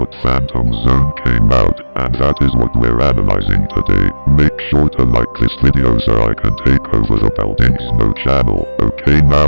Phantom Zone came out, and that is what we're analyzing today. Make sure to like this video so I can take over the Buildings No channel. Okay,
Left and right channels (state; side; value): inverted; both; correlation -1.00